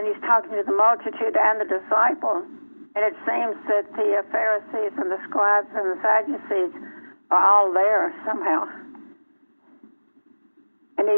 talking to the multitude and the disciples. And it seems that the Pharisees and the scribes and the Sadducees are all there somehow. And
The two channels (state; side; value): inverted; both; correlation -1.00